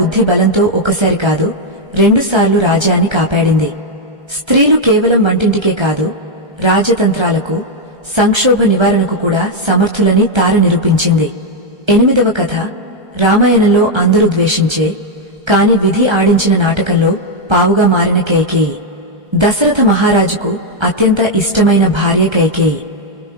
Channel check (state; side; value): late; left; 1.3 ms